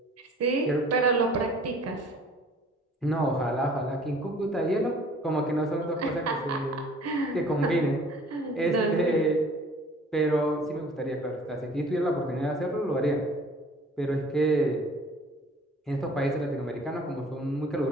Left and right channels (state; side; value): normal; both; correlation 0.51